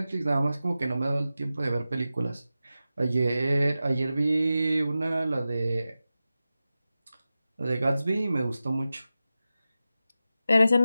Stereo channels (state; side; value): inverted; both; correlation -0.94